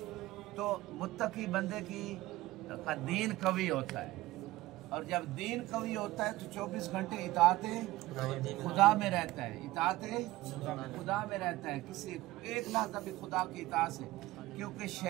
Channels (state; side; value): quieter; left; 17.9 dB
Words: تو متقی بندے کی دین قوی ہوتا ہے اور جب دین قوی ہوتا ہے تو 24 گھنٹے اطاعت خدا میں رہتا ہے. اطاعت خدا میں رہتا ہے. کسی ایک لحظہ بھی خدا کی اطاعت سے کیونکہ